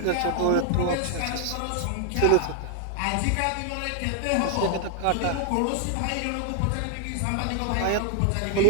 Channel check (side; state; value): both; different; correlation 0.00